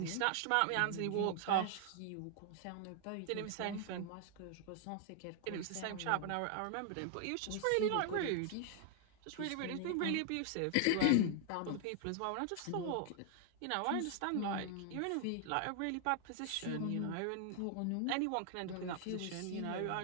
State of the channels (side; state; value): both; different; correlation 0.00